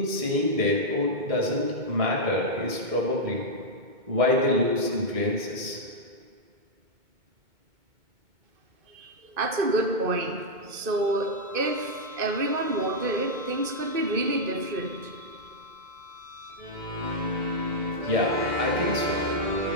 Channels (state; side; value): late; left; 2.2 ms